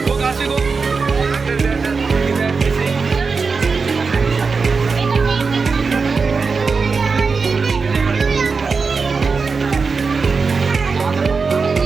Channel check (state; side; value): quieter; left; 4.8 dB